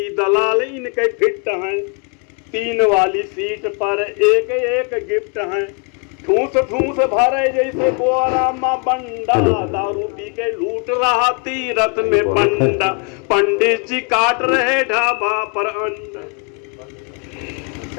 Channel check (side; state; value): right; quieter; 35.5 dB